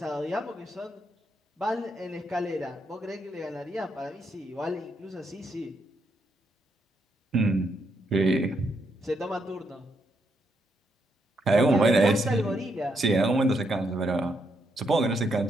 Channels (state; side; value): normal; both; correlation 0.78